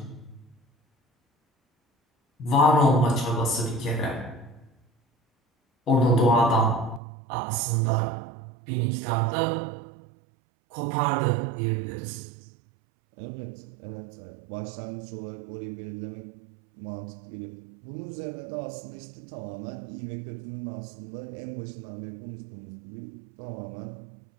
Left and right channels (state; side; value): drops out; left; at 7.0 s